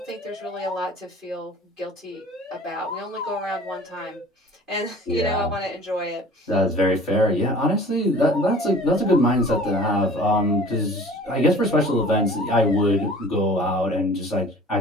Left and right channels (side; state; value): both; normal; correlation 0.46